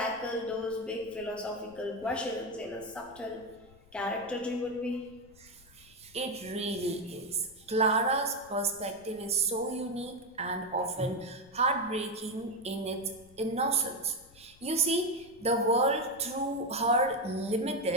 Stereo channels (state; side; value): noise; left; rumble, 25 dB below the sound